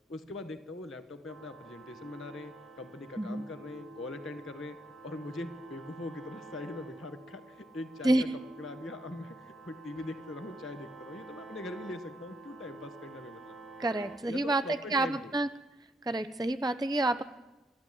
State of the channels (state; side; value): normal; both; correlation 0.76